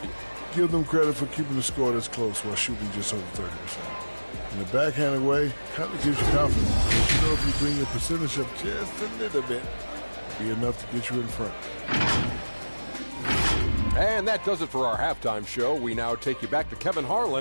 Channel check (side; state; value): both; inverted; correlation -1.00